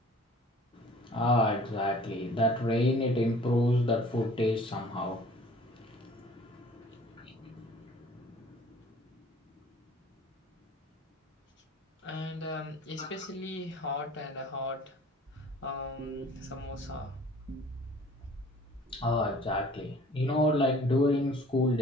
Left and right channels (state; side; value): normal; both; correlation 0.51